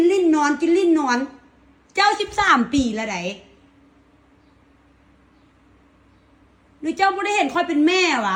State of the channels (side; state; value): both; identical; correlation 1.00